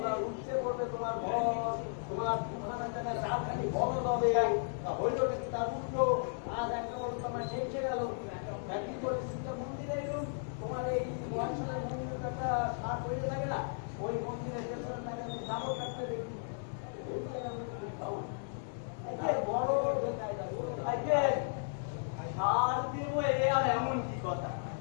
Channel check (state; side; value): silent; right; digital silence